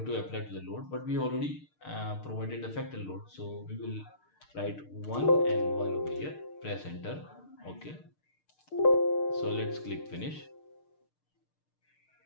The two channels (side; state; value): right; late; 6.6 ms